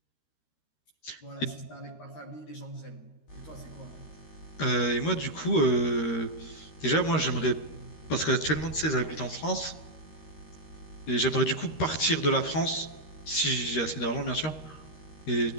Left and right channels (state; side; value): late; right; 13 ms